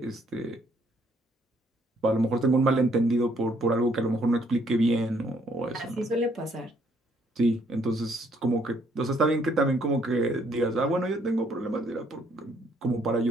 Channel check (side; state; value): both; normal; correlation 0.68